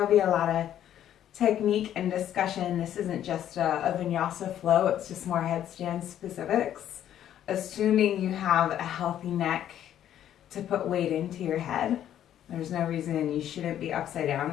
be a lot of technique and discussion, this isn't just a vinyasa flow, it's just more headstand specifics, assuming you have a healthy neck to put weight into your head. There's no reason you shouldn't be upside down.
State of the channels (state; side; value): quieter; right; 10.9 dB